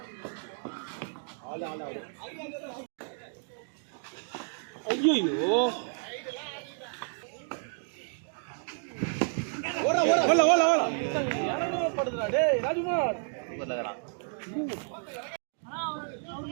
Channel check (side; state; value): left; silent; 57 dB below the other